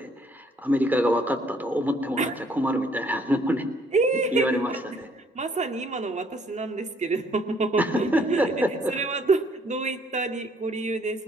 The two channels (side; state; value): both; normal; correlation 0.64